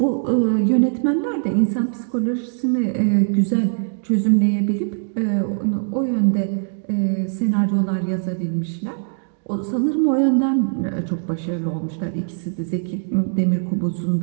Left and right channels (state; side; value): silent; left; digital silence